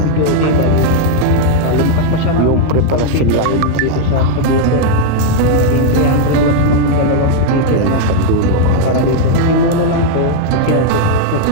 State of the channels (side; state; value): both; different; correlation 0.00